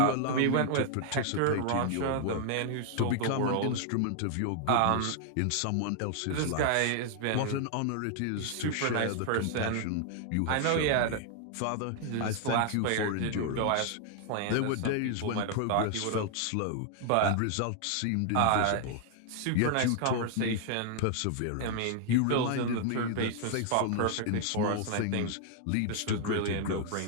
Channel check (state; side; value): different; both; correlation 0.00